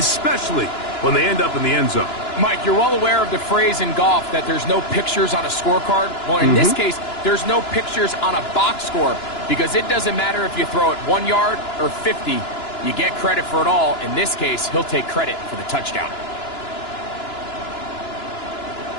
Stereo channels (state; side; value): late; right; 2.9 ms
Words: when they end up in the end zone. Mike, you're well aware of the phrase in golf that there's no pictures on a scorecard. Well, in this case, there's no pictures on a box score because it doesn't matter if you throw it 1 yard or 50. You get credit for it all. In this case, he'll take credit for the touchdown.